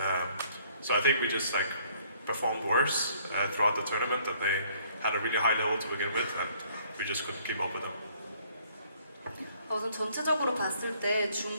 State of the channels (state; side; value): inverted; both; correlation -0.62